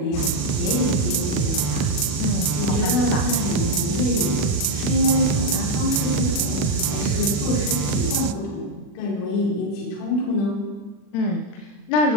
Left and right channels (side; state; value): right; late; 40 ms